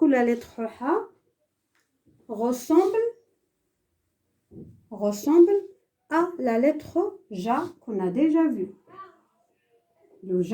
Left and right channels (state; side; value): identical; both; correlation 1.00